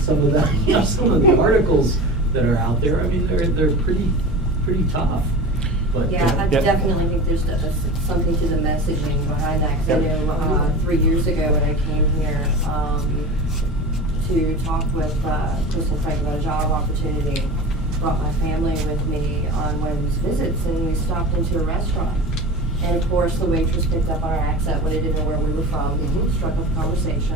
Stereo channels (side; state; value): both; normal; correlation 0.32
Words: some of the, some of the articles that are out there. I mean, they're pretty tough. But, Yeah, I definitely think there's something to the messaging behind that, because I know 3 years ago when I came here to talk with Chris and Frank about a job opportunity, brought my family with me on one of these visits, and we stopped into a restaurant. And of course, the waitress picked up our accent when they didn't know where we were from, struck up a